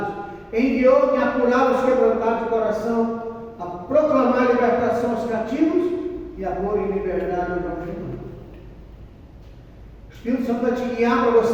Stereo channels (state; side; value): identical; both; correlation 1.00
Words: enviou-me a curar os quebrantados de coração, a proclamar a libertação aos cativos e a pôr em liberdade aos algemados. O Espírito Santo vai te guiar para